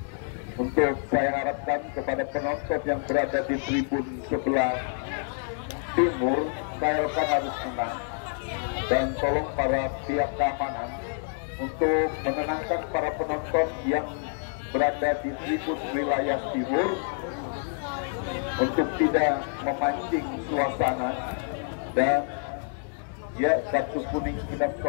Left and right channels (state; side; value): silent; right; 60 dB below the other